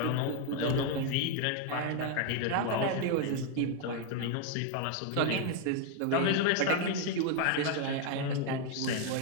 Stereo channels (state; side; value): different; both; correlation 0.01